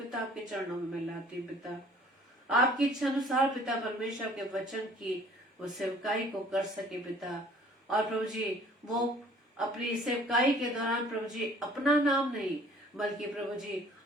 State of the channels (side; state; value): both; normal; correlation 0.54